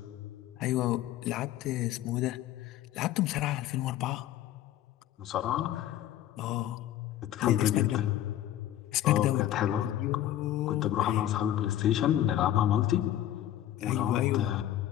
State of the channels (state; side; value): quieter; right; 12.4 dB